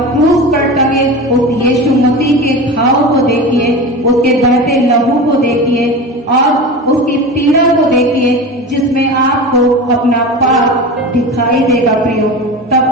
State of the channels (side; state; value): both; normal; correlation 0.29